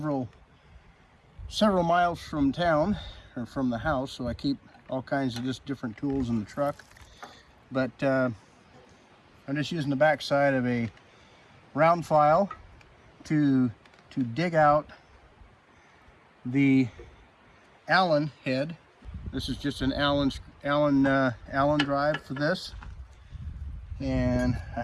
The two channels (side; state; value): both; identical; correlation 1.00